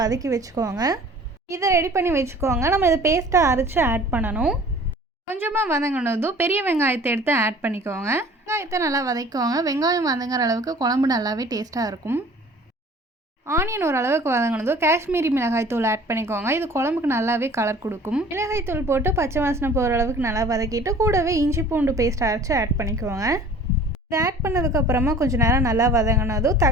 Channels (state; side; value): normal; both; correlation 0.48